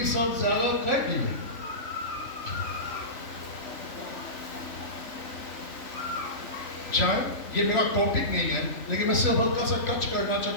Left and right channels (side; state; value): right; late; 3.5 ms